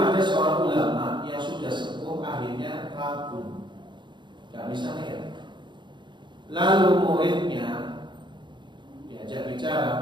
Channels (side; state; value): left; late; 0.23 ms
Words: seorang ulama yang sudah sepuh, akhirnya ragu, nggak bisa lihat. Lalu muridnya diajak